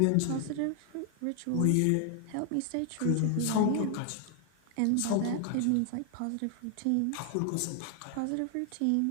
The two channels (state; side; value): different; both; correlation 0.00